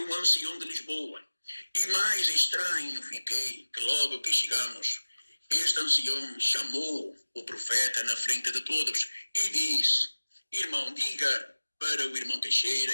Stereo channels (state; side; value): inverted; both; correlation -1.00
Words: ancião de Lisboa. E mais estranho fiquei que logo que chegamos, este ancião chamou o profeta na frente de todos e disse: irmão, diga para o irmão Teixeira